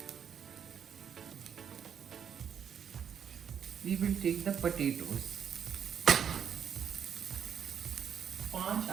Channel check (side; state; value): left; quieter; 8.0 dB